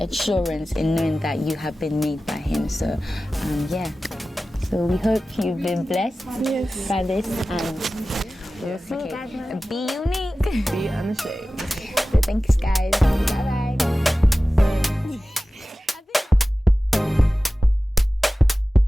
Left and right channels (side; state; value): both; normal; correlation 0.96